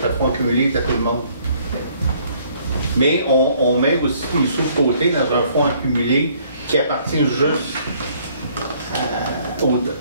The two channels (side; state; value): both; inverted; correlation -0.62